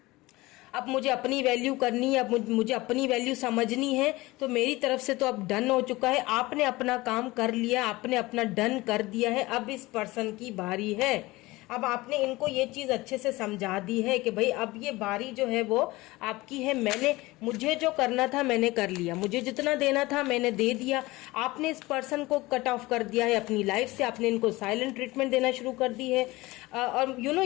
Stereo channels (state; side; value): quieter; right; 20.5 dB